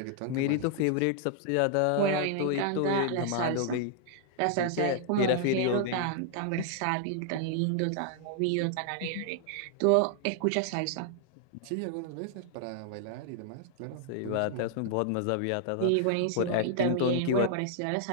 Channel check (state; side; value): different; both; correlation 0.00